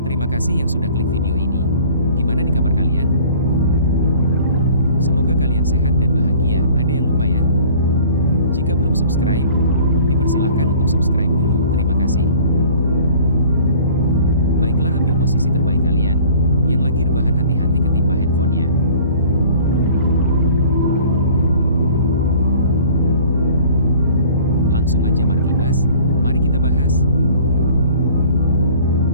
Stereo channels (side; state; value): both; inverted; correlation -0.50